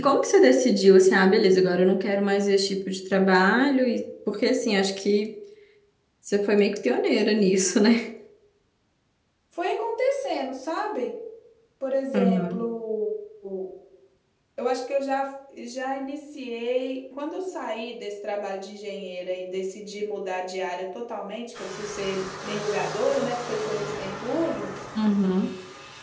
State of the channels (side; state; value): both; identical; correlation 1.00